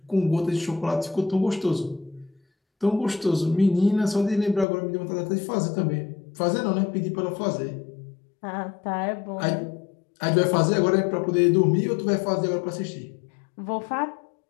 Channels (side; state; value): right; drops out; at 4.7 s